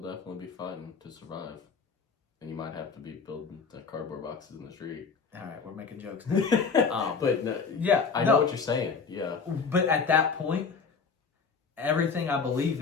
definitely be fighting to survive. And you might have to be building the cardboard boxes in the street. All right, we're making jokes. But no, yeah, I know what you're saying. Yeah. But at that point, everything I believe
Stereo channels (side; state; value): right; quieter; 5.3 dB